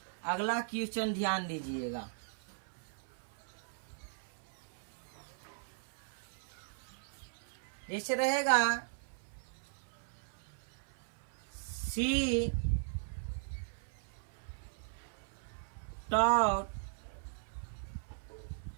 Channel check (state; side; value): silent; left; 52 dB below the other